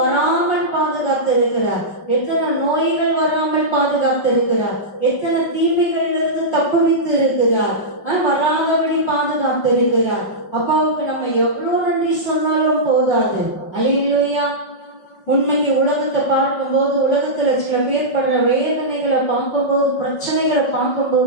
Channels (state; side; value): late; right; 5.2 ms